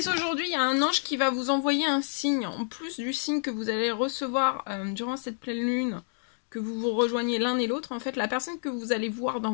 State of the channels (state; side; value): silent; right; digital silence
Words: aujourd'hui, il y a un ange qui va vous envoyer un signe. En plus du signe que vous allez recevoir durant cette pleine lune, que vous vous rejoignez l'un et l'autre. En fait, la personne que vous allez voir